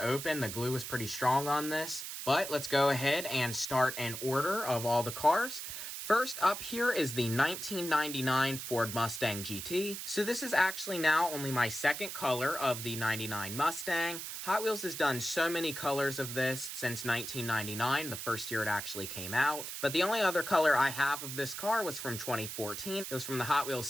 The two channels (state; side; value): noise; right; hiss, 7 dB below the sound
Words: open. The glue was pretty strong on this. But let's go ahead and start an order of all the cars. First up here is the 1999 Ford Mustang GT. So this is actually now only my second color of the 99 Mustang. Hot Wheels has done so many colors of this since 1999, the first year it actually came out. But the only other color I have of this car was from 2014. It was from the Hot Wheels